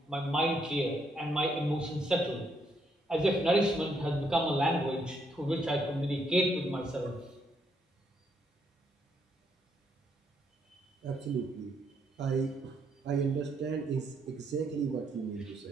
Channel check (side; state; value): both; normal; correlation 0.74